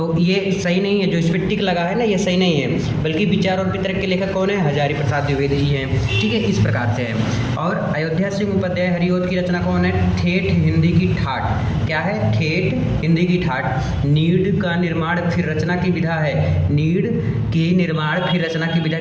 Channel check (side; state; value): both; identical; correlation 1.00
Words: ये सही नहीं है। जो इस पर टिक लगा है ना, ये सही नहीं है, बल्कि विचार और वितर्क के लेखक कौन है, हजारी प्रसाद द्विवेदी जी हैं। ठीक है, इस प्रकार से है। और अयोध्या सिंह उपाध्याय हरिओद की रचना कौन है, ठेठ हिंदी की ठाठ, क्या है, ठेठ हिंदी की ठाठ। नीड का निर्माण फिर रचना की विधा है, नीड की निर्माण फिर रचना की विधा